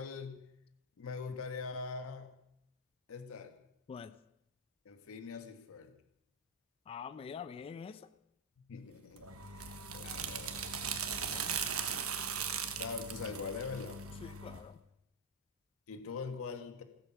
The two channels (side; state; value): both; normal; correlation 0.01